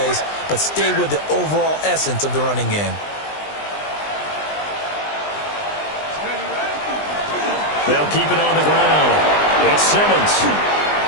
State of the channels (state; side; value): late; right; 20 ms